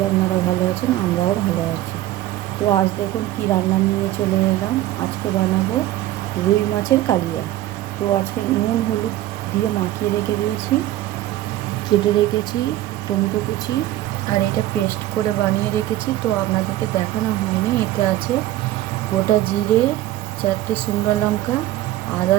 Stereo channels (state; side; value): quieter; left; 14.8 dB